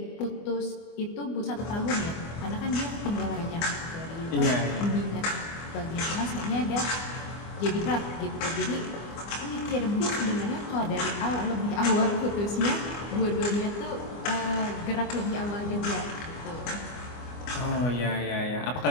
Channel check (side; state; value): right; late; 24 ms